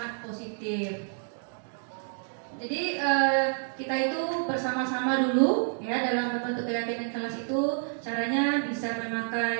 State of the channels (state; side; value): silent; left; 57 dB below the other